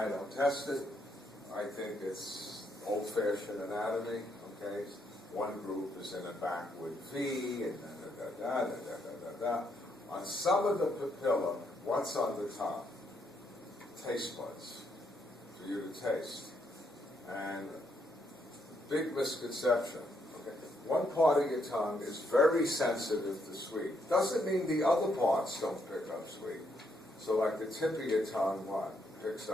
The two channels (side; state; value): both; normal; correlation 0.75